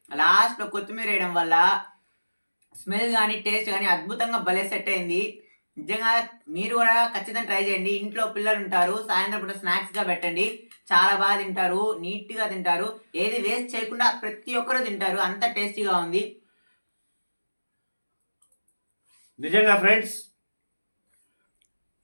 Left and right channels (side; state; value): both; inverted; correlation -1.00